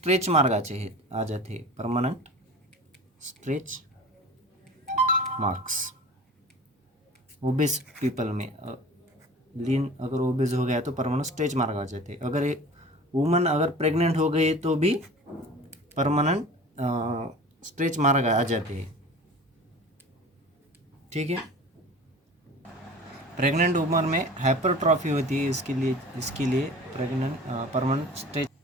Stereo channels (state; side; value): normal; both; correlation 0.39